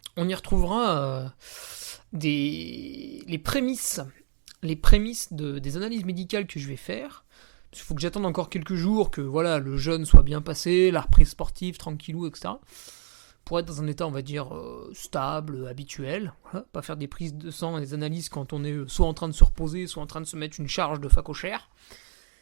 on y retrouvera les prémices des analyses médicales que je vais faire. Il faut que j'attende encore quelques jours, que voilà, le jeûne soit bien passé, la reprise sportive, tranquillou, etc. Pour être dans un état, on va dire, stable, habituel. Voilà, pas faire des prises de sang et des analyses quand on est soit en train de se reposer, soit en train de se mettre une charge de facochère.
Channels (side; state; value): left; silent; 61 dB below the other